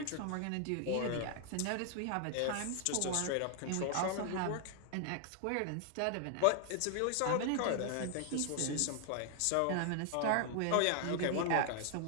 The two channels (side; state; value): both; different; correlation 0.00